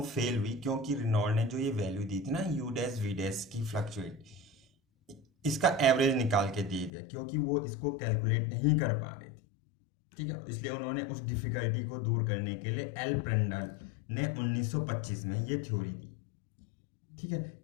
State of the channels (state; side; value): drops out; right; at 6.9 s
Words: फेल हुई, क्योंकि रेनॉल्ड ने जो ये वैल्यू दी थी ना, यू डैश वी डैश की फ्लक्चुएट, इसका एवरेज निकाल के दे दिया, क्योंकि वो इसको कैलकुलेट नहीं कर पा रहे थे। ठीक है, इसलिए उन्होंने उस डिफिकल्टी को दूर करने के लिए एल प्रेंडल ने 1925 में ये थ्योरी दी। ठीक है,